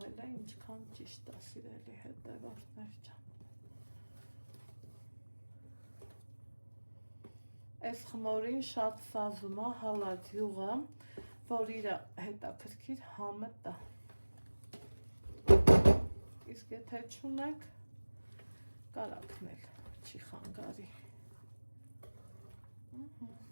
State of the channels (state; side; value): inverted; both; correlation -1.00